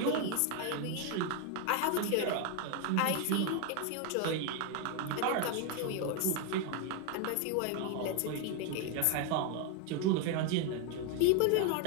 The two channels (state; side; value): different; both; correlation 0.01